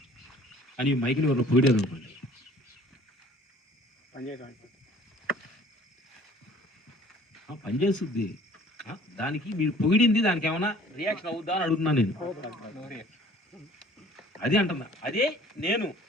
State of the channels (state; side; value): normal; both; correlation 0.52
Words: అని. మైక్ని వాళ్ళు పొగిడారు అనుకోండి, పనిచేస్తుంది. దానికి మీరు పొగిడింది దానికి ఏమైనా రియాక్షన్ అవుద్దా అని అడుగుతున్నాను నేను. అది అంటున్నా, అదే నేను.